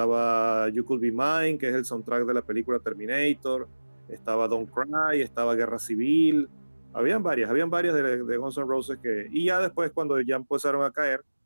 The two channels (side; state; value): both; inverted; correlation -1.00